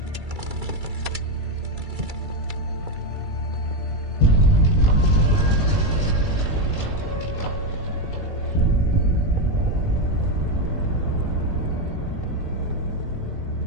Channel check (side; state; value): left; late; 2.3 ms